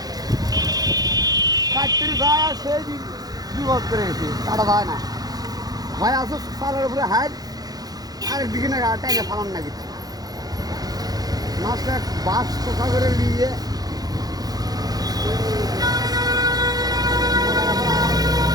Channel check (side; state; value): left; late; 0.19 ms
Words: কাটতে যায় আর সেই বিপদ করে গেছে কাটা যায় না হয় আসো সালের উপরে হাইট আরেকদিকে না টাইনে ফালান না কিছু মাছটা বাস কোথা করে নিয়ে